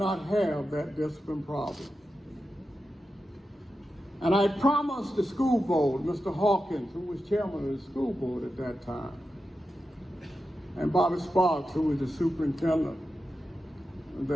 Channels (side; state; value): both; normal; correlation 0.90